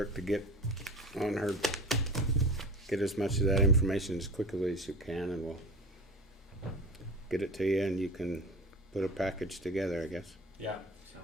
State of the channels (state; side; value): normal; both; correlation 0.34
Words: to get on her, get as much of that information as quickly as you can, and we'll get it to you, and you can put a package together, I guess. Yeah,